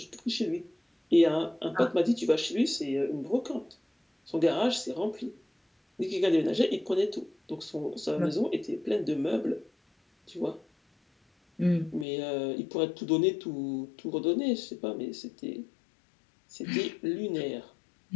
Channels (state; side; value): drops out; right; at 12.1 s